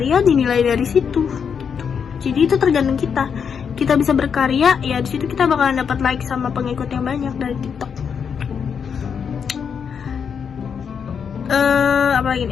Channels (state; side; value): quieter; right; 6.9 dB